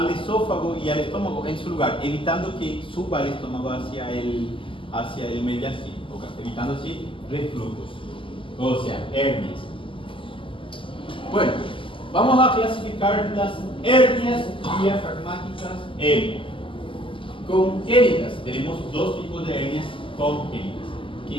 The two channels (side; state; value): right; late; 0.25 ms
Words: esófago y al estómago en su lugar, evitando que suba el estómago hacia el mediastino, evitando así reflujo. O sea, hernias. Bueno, vamos a clasificar las hernias diafragmáticas congénitas. Tenemos dos tipos de hernias congénitas,